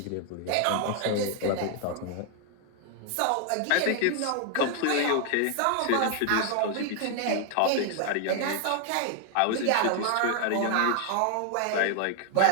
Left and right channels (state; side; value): different; both; correlation 0.00